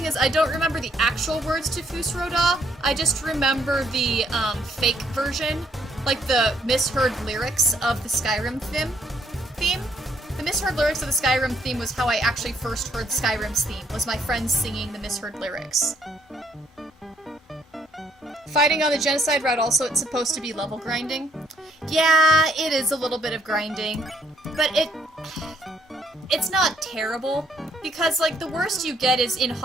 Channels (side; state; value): both; normal; correlation 0.69